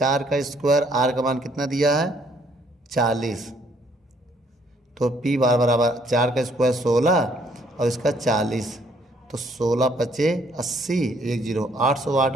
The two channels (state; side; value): normal; both; correlation 0.65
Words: का स्क्वायर, आर का मान कितना दिया है 40, तो P बार बराबर 4 का स्क्वायर 16 और इसका 40, तो 16 पचे 80, 1 जीरो 800